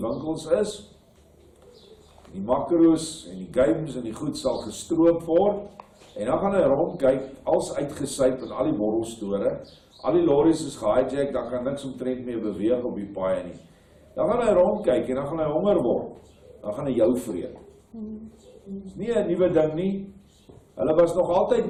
winkels is, die makro's en die games en die goed sal gestroop word, en dan gaan hy rondkyk, als uitgesyp in al die borrelstore, al die lorries is gehijack, dan kan niks omtrent meer beweeg op die paaie nie. Dan gaan hy rondkyk en dan gaan hy honger word, dan gaan hy jou vreet. Dis nie 'n nuwe ding nie, hulle was nog altyd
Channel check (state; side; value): identical; both; correlation 1.00